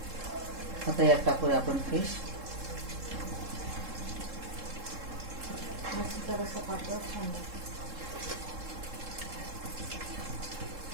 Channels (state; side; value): late; left; 3.7 ms